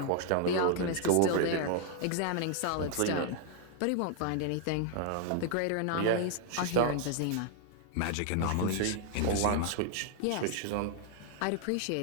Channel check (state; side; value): different; both; correlation 0.00